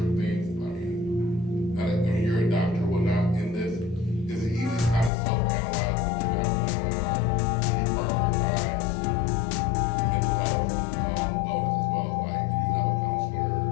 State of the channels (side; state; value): right; drops out; at 5.1 s